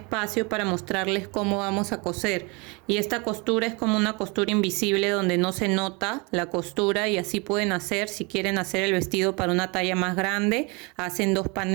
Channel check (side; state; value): left; quieter; 29.0 dB